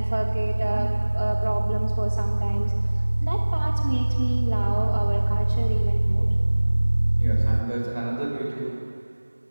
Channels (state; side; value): inverted; both; correlation -1.00